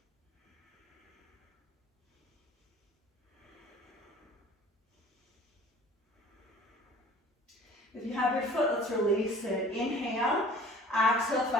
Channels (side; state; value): both; normal; correlation 0.48